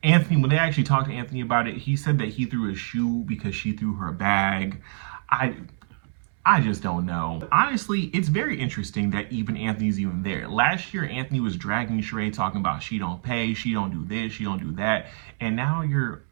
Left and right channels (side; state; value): left; silent; 62 dB below the other